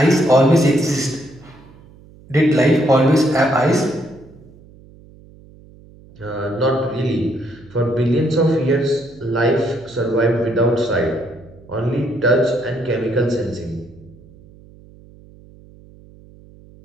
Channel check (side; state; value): right; noise; hum, 24 dB below the sound